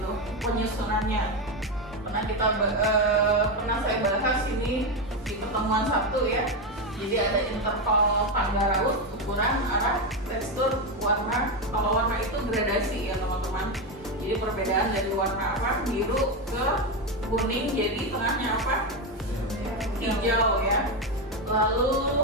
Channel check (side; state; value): both; normal; correlation 0.11